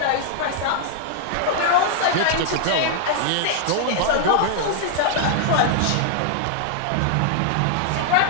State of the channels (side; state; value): both; different; correlation -0.01